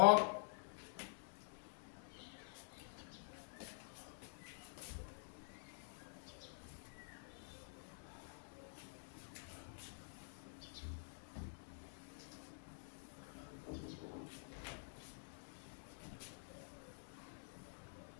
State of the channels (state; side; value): silent; right; digital silence